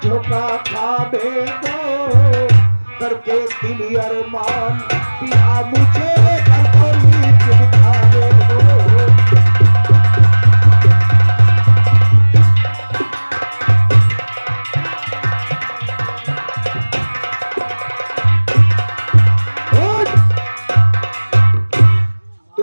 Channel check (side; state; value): both; inverted; correlation -1.00